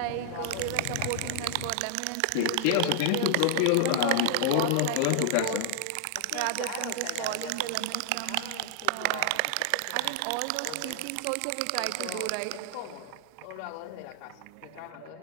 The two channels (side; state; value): both; different; correlation -0.01